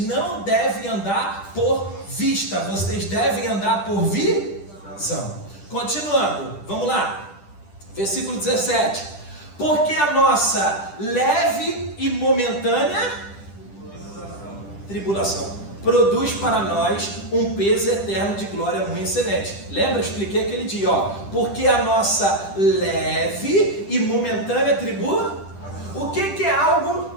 não devem andar por vista, vocês devem andar por visão. Continuando, vamos lá. Versículo 17. Porque a nossa leve e momentânea tribulação produz para nós um peso eterno de glória muito excelente. Lembra? Expliquei aquele dia, ó. Porque a nossa leve e momentânea tribulação. O que é algo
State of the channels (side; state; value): right; late; 10 ms